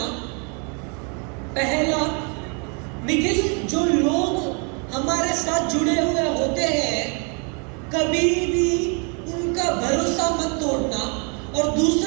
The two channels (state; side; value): quieter; left; 36.0 dB